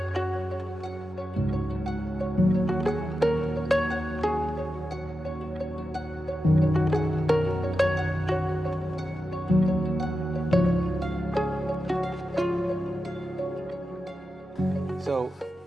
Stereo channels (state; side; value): normal; both; correlation 0.90